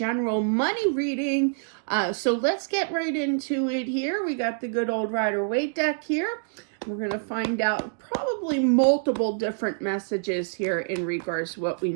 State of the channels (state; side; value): silent; left; digital silence